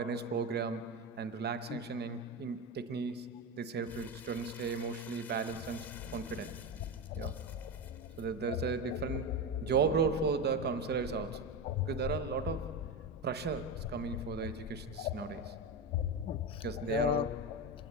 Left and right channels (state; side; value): normal; both; correlation 0.18